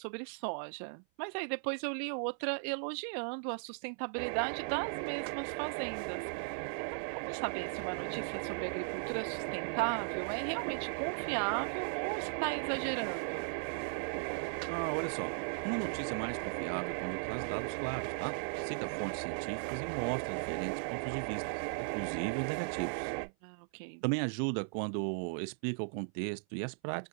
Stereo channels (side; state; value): left; silent; 53 dB below the other